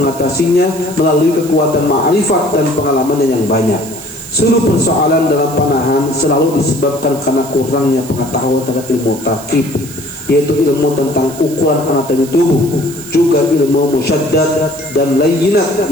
melalui kekuatan ma'rifat dan pengalamannya yang banyak. Seluruh persoalan dalam panahan selalu disebabkan karena kurangnya pengetahuan tentang ilmu tarkib, yaitu ilmu tentang ukuran anatomi tubuh, juga ilmu musyaddad dan layyinat,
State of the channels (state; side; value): noise; right; hiss, 16 dB below the sound